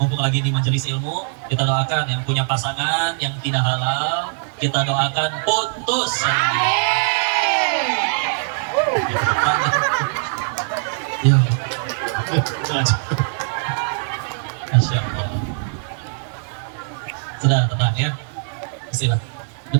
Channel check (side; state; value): left; silent; digital silence